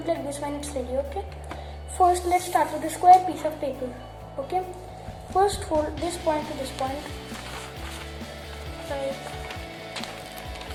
like this when it's ready, okay? First, let's start with a square piece of paper, okay? First, fold this point to this point, like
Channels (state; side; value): identical; both; correlation 1.00